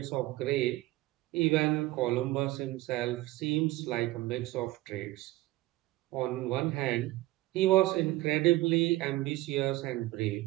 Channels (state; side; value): quieter; left; 17.9 dB